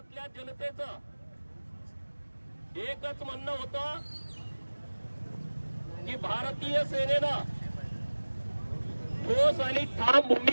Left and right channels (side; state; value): both; inverted; correlation -1.00